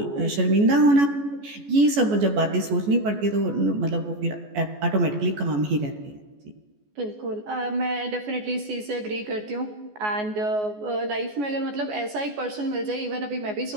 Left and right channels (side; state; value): left; late; 14 ms